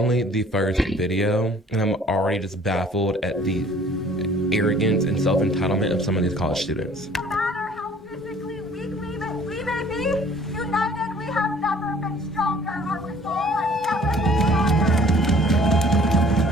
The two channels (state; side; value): normal; both; correlation 0.53